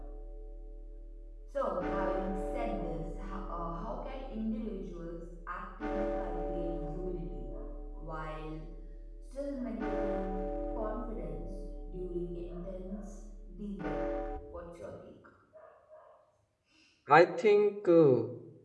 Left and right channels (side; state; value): both; identical; correlation 1.00